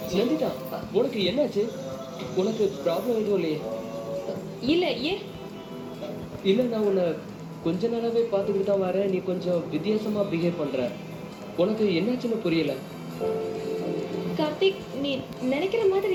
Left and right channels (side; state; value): both; identical; correlation 1.00